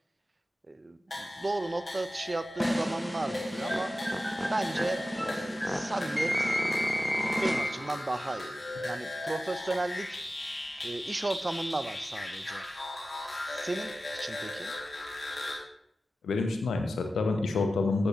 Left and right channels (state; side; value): normal; both; correlation 0.94